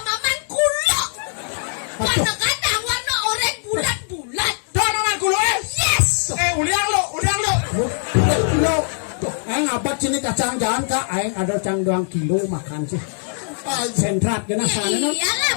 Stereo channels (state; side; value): silent; right; digital silence